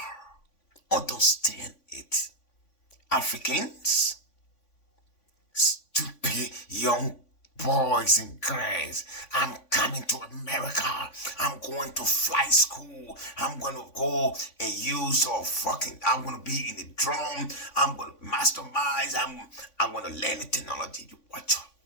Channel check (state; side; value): late; right; 3.5 ms